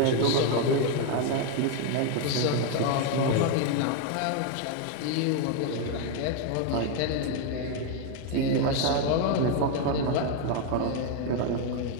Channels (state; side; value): different; both; correlation 0.01